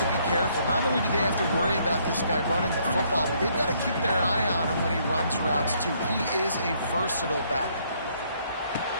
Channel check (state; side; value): inverted; both; correlation -0.68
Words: be careful. Not only do they have to worry about this guy running the football, but they've got to keep their eye on him when he runs routes, too. He is a versatile back.